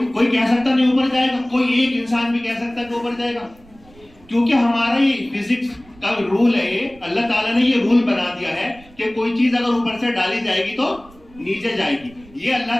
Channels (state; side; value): noise; right; rumble, 25 dB below the sound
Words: کہہ سکتا نہیں اوپر جائے گا، کوئی ایک انسان بھی کہہ سکتا ہے کہ اوپر جائے گا، کیونکہ ہمارا یہ فزکس کا رول ہے. یہ اللہ تعالیٰ نے یہ رول بنا دیا ہے کہ کوئی چیز اگر اوپر سے ڈالی جائے گی تو نیچے جائے گی. یہ اللہ